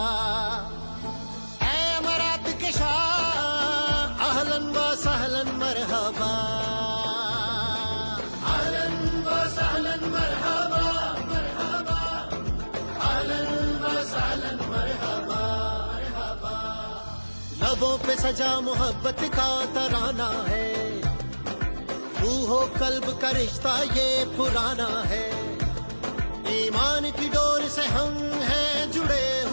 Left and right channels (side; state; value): both; inverted; correlation -1.00